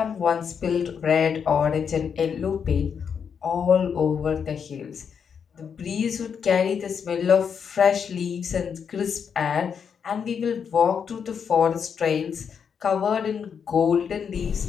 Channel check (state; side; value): quieter; right; 7.0 dB